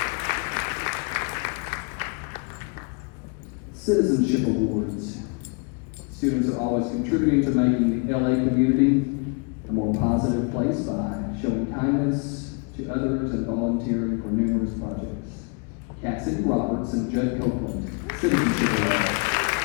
Citizenship Awards. Students are always contributing to making the LA community a more positive place by showing kindness to others and volunteering for numerous projects. Cassidy Roberts and Judd Copeland, Citizenship Awards.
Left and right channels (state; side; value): quieter; right; 34.8 dB